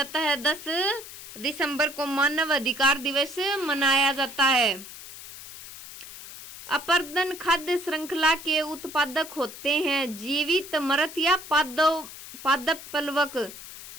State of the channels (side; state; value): left; noise; hiss, 14 dB below the sound